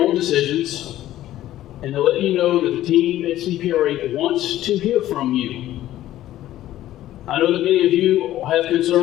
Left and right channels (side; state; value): right; quieter; 13.8 dB